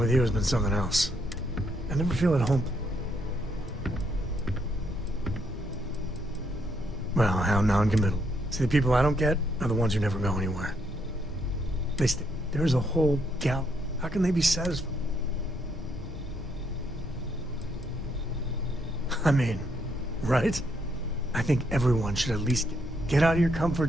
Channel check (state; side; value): normal; both; correlation 0.74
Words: you has been something else. I never feel at home. Well, how non-committal. See, the people I don't get are the ones who never go anywhere. There's a whole gal. How can they be satisfied? I mean, right? I think everyone should at least get out of your